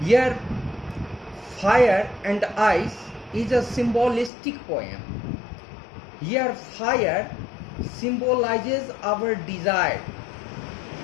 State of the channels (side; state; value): right; drops out; at 4.3 s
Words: Here Fire and Ice is a symbolistic poem. Here fire symbolizes our desire,